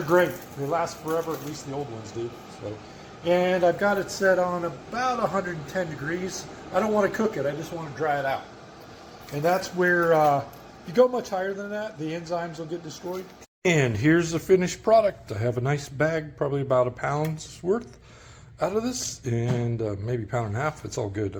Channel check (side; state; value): both; identical; correlation 1.00